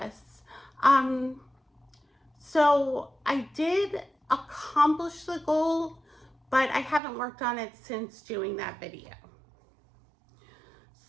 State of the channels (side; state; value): left; drops out; at 7.0 s